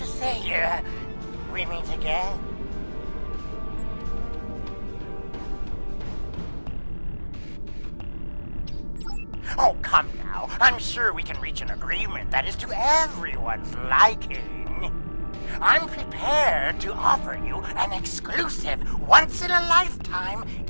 say, we meet again. Oh, come now. I'm sure we can reach an agreement that is to everyone's liking. I'm prepared to offer you an exclusive, once-in-a-lifetime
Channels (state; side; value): inverted; both; correlation -1.00